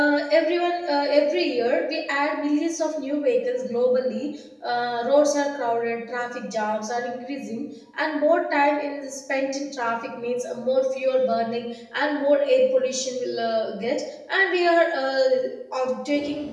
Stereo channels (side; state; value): both; identical; correlation 1.00